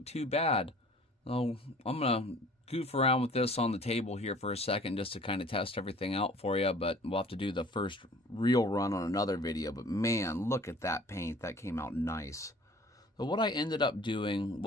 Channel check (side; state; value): both; normal; correlation 0.50